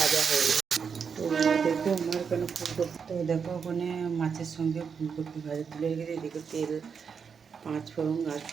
হয়ে গেছে। তো দেখো আমার ওখানে ফুলকপি, তো দেখো ওখানে মাছের সঙ্গে ফুলকপি ভাজা তুলে গেছে। এদিকে তেল, পাঁচ ফোড়ন আর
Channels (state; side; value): quieter; left; 6.3 dB